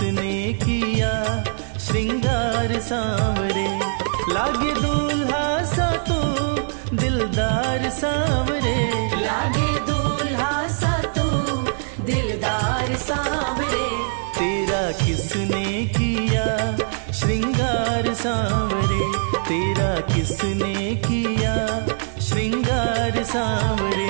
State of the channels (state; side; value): silent; left; 62 dB below the other